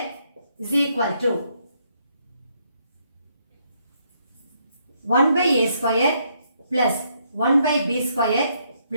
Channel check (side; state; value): both; inverted; correlation -0.73